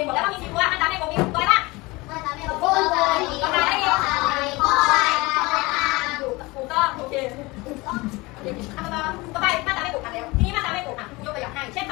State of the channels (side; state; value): right; quieter; 23.0 dB